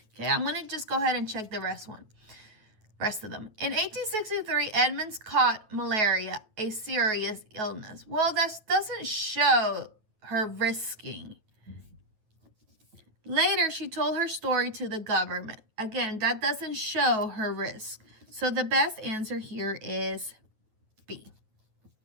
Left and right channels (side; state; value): left; late; 9.4 ms